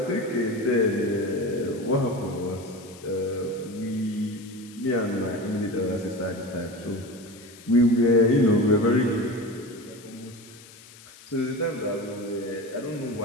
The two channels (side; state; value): left; noise; hiss, 21 dB below the sound